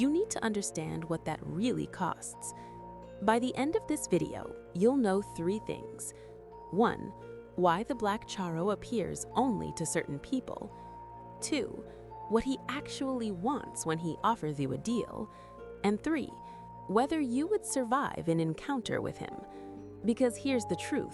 need to understand what that really costs. By the end of this video, you'll know 3 things. 1. Why the Black Charro appears only to certain people. 2. What he actually wants when he offers you a deal. And 3. Whether you would survive an encounter with him. Because here's the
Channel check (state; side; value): identical; both; correlation 1.00